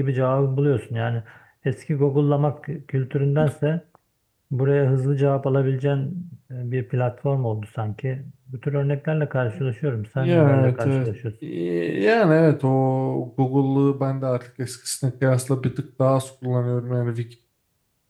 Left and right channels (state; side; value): identical; both; correlation 1.00